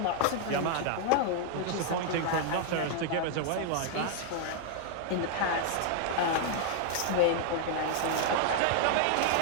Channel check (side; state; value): both; different; correlation 0.00